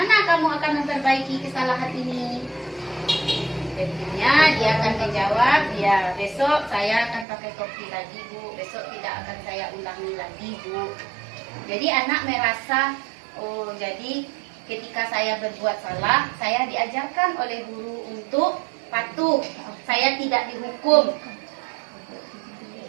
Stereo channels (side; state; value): left; drops out; at 7.2 s